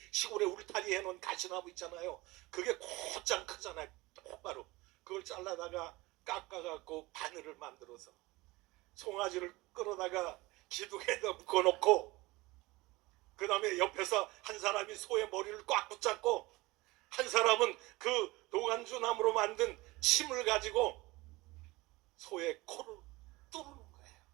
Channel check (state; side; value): quieter; left; 21.2 dB